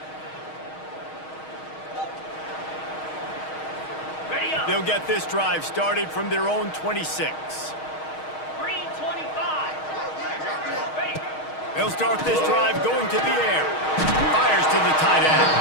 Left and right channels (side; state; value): right; late; 6.4 ms